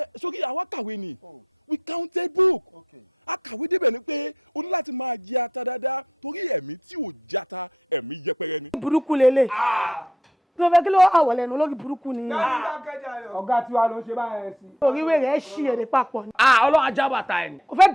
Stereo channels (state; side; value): normal; both; correlation 0.62